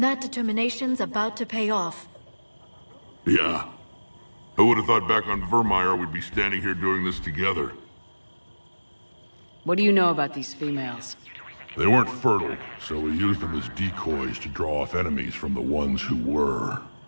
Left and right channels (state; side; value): inverted; both; correlation -1.00